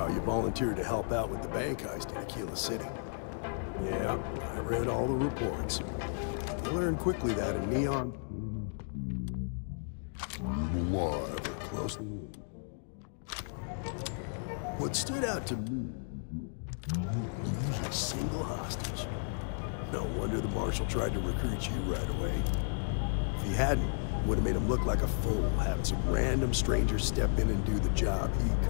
you volunteered to help out with the bank heist in Aquila City. Yeah, I read all the reports. I learned quickly that in Neon, alive or close. What stood out to me, you didn't lose a single hostage. No wonder the Marshal tried to recruit you right away. If he hadn't, would have made him look like a fool, having some random stranger step in and do the job he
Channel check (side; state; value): right; silent; digital silence